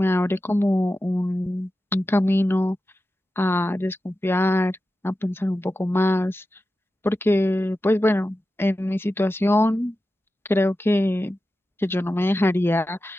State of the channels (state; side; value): normal; both; correlation 0.92